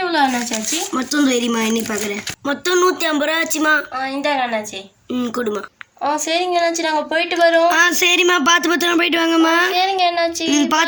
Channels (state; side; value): identical; both; correlation 1.00